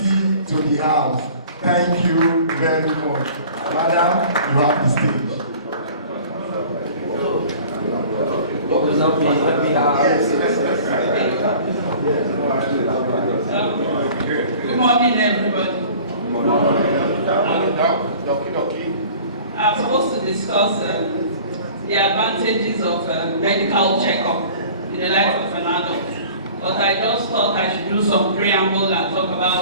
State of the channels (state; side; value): inverted; both; correlation -0.46